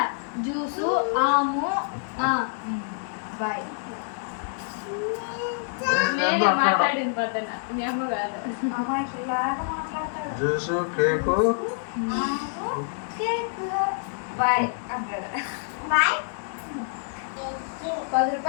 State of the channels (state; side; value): silent; right; 60 dB below the other